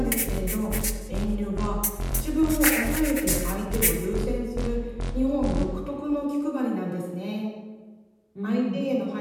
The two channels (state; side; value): identical; both; correlation 1.00